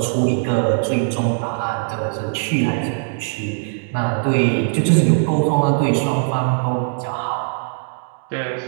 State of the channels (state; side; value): silent; left; digital silence